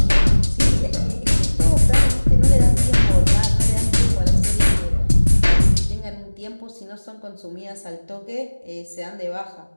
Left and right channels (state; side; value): inverted; both; correlation -1.00